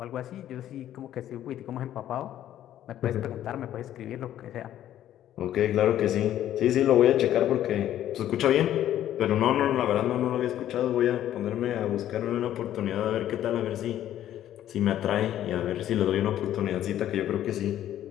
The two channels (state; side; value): quieter; right; 11.9 dB